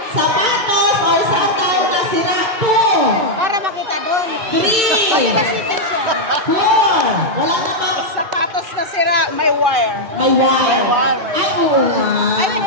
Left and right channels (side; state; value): left; late; 2.2 ms